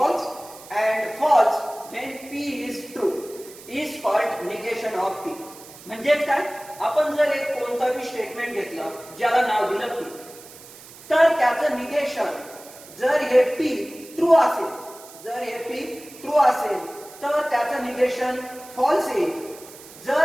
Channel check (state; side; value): noise; right; hiss, 19 dB below the sound